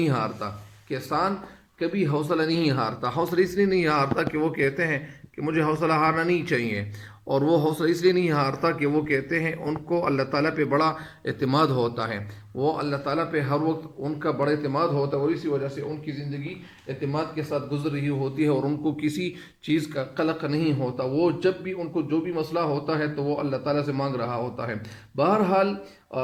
ہارتا۔ کسان کبھی حوصلہ نہیں ہارتا۔ حوصلہ اس لیے نہیں ہارتا کہ وہ کہتے ہیں کہ مجھے حوصلہ ہارنا نہیں چاہیے، اور وہ حوصلہ اس لیے نہیں ہارتا کہ وہ کہتے ہیں ان کو اللہ تعالیٰ پہ بڑا اعتماد ہوتا ہے۔ وہ اللہ تعالیٰ پہ ہر وقت ان کا بڑا اعتماد ہوتا ہے، اور اسی وجہ سے ان کی زندگی اعتماد کے ساتھ گزر رہی ہوتی ہے اور ان کو کسی چیز کا قلق نہیں ہوتا۔ وہ جب بھی ان کو جو بھی مسئلہ ہوتا ہے تو وہ اللہ تعالیٰ سے مانگ رہا ہوتا ہے۔ بہرحال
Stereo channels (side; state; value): both; identical; correlation 1.00